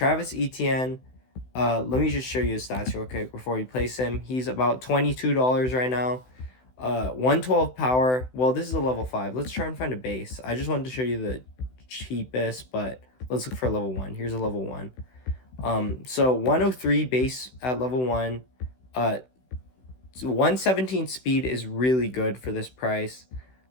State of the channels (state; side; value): late; right; 16 ms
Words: Etienne, let me just show you his stats real quick before we place him. He's about $22 right now. 112 power. Well, this is a level 5. Let's try and find a base. I just wanted to show you the cheapest, but let's look for a level 1. Here's a level 1. So 103 base at level 1. 117 speed is really good for this price.